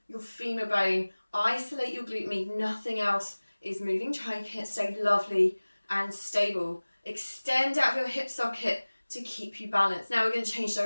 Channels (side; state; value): both; inverted; correlation -1.00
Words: your femur bone. Isolate your glute med. Nothing else is moving. Try and stay lovely and stable. Extend out your hip socket to keep you balanced. Now we're going to change